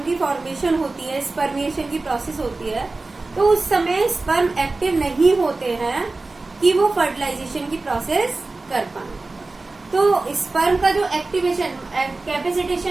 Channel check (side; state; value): left; quieter; 3.4 dB